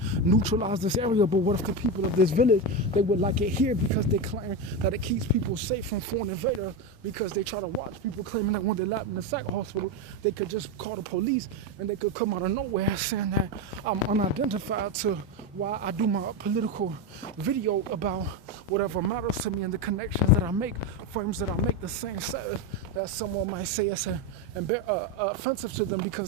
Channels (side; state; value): both; normal; correlation 0.14